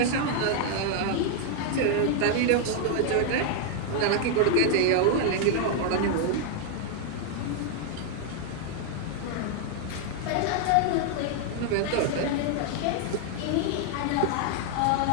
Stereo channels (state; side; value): different; both; correlation 0.00